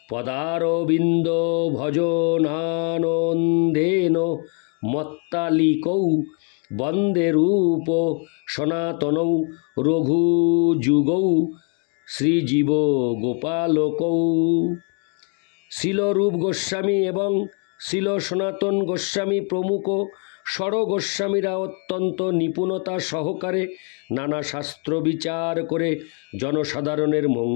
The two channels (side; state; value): right; quieter; 39.3 dB